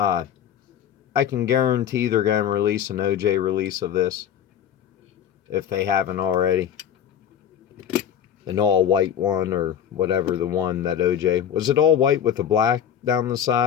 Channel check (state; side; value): quieter; right; 9.1 dB